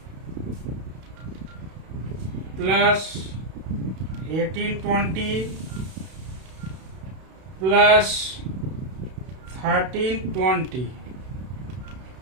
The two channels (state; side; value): late; left; 32 ms